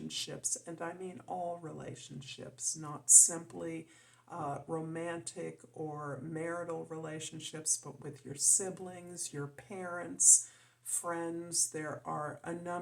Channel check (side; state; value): both; identical; correlation 1.00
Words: And I mean all relationships, not simply romantic or marital relationships, but with your siblings, your parents, friends. There are a